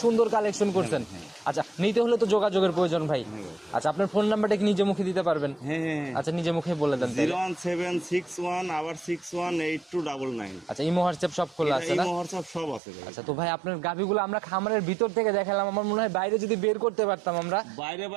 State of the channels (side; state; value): left; drops out; at 12.8 s